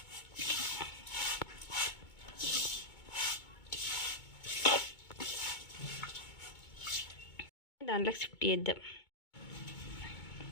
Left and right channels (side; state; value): right; late; 2.2 ms